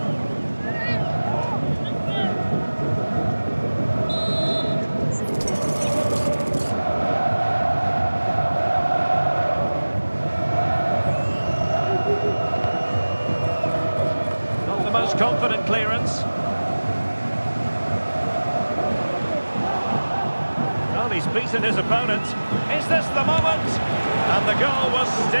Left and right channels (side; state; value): both; inverted; correlation -1.00